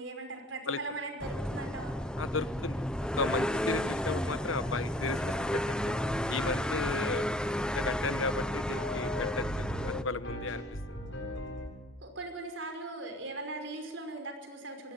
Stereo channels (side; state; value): both; normal; correlation 0.51